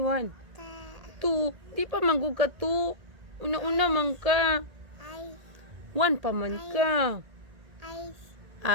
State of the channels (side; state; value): left; late; 1.8 ms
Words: Two. Di pa manggug ka two. Una-una man ka. One pa man ka.